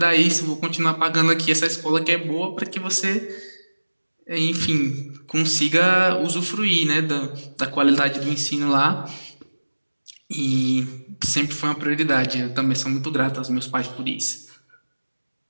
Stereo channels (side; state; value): both; inverted; correlation -1.00